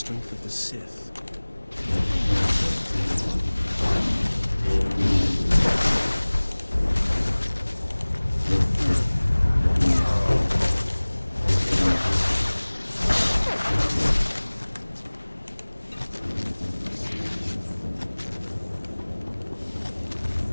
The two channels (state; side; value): inverted; both; correlation -1.00